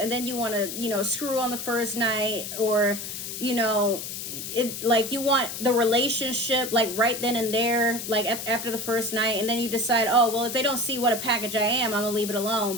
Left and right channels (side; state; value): left; noise; hiss, 7 dB below the sound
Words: then you want to, you know, screw on the first night, or, you know, like you want the relationship like right then and there, like after the first night. And then you decide, oh, well, if they don't see what a package I am, I'm going to leave it alone.